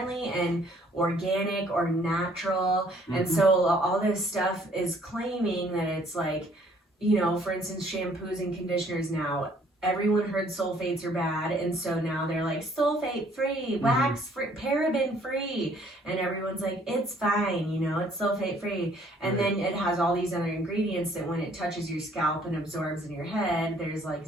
and organic or natural. And so all this stuff is claiming that it's like, for instance, shampoos and conditioners now, everyone heard sulfates are bad, and so now they're like sulfate free, wax free, paraben free, and everyone's like, it's fine, it's sulfate free. And then it has all these other ingredients that when it touches your scalp and absorbs in your head, there's like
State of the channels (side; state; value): both; normal; correlation 0.61